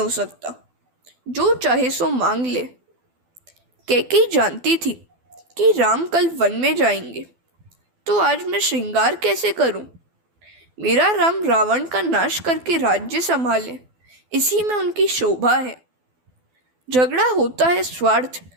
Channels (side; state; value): left; late; 12 ms